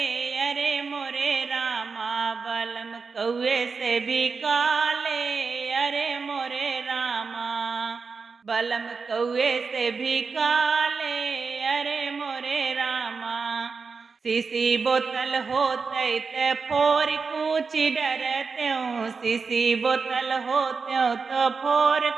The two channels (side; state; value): left; quieter; 4.9 dB